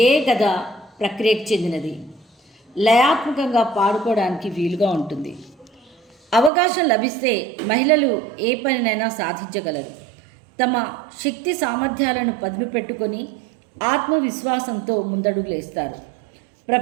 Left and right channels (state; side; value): drops out; left; at 6.5 s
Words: కథ ప్రక్రియకు చెందినది. లయాత్మకంగా పాడుకోవడానికి వీలుగా ఉంటుంది. అవకాశం లభిస్తే మహిళలు ఏ పనినైనా సాధించగలరు. తమ శక్తి సామర్థ్యాలను పదును పెట్టుకొని ఆత్మవిశ్వాసంతో ముందడుగులేస్తారు.